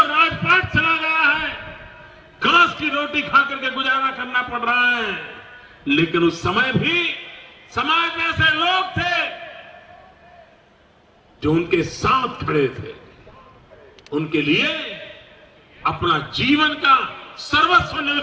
चला गया है, घास की रोटी खा करके गुजारा करना पड़ रहा है, लेकिन उस समय भी समाज में ऐसे लोग थे जो उनके साथ खड़े थे, उनके लिए अपना जीवन का सर्वस्व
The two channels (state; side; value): identical; both; correlation 1.00